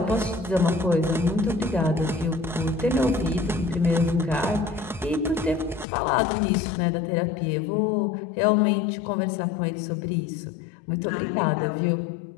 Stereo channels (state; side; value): drops out; right; at 5.9 s